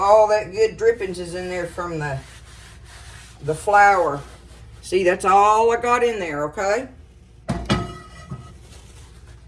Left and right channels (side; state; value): both; identical; correlation 1.00